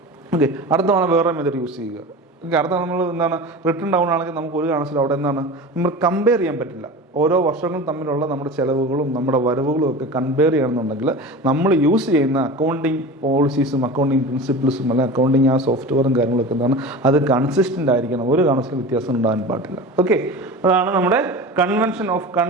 ഓക്കെ, അടുത്ത തവണ വേറെ മെത്തേഡ് യൂസ് ചെയ്യുക. അടുത്ത നമ്മൾ എന്താണ് റിട്ടേൺ ഡൗൺ ആണെങ്കിൽ നമുക്ക് ഒരു കാരണത്തിലും അവിടെ എന്താണ് നമ്മൾ കമ്പയർ ചെയ്യാൻ പറ്റില്ല. ഓരോ വർഷങ്ങളും തമ്മിലുള്ള നമ്മുടെ ചിലവുകളും നമ്മുടെ വരവുകളും ഒക്കെ കമ്പയർ ചെയ്യണമെന്നുണ്ടെങ്കിൽ നമ്മൾ യൂസ് ചെയ്യുന്ന അക്കൗണ്ടിങ് പോളിസീസും അക്കൗണ്ടിങ് പ്രിൻസിപ്പിൾസും അല്ലെങ്കിൽ അക്കൗണ്ടിങ് ആ സോഫ്റ്റ്വെയറും കാര്യങ്ങളൊക്കെ എന്താണ് അത് കൺസിസ്റ്റൻ്റ് ആയിരിക്കണം. ഒരു കാരണത്തിലും വ്യത്യാസം ഉണ്ടാകാൻ പാടില്ല. ഓക്കെ, അതാണ് നമ്മുടെ കൺവെൻഷൻ ഓഫ്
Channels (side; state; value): both; normal; correlation 0.32